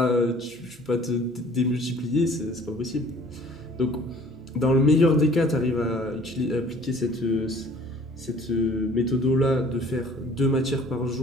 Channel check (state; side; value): noise; right; hum, 28 dB below the sound